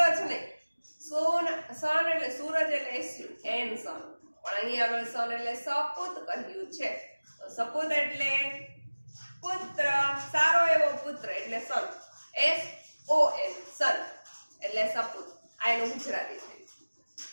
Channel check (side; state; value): both; inverted; correlation -1.00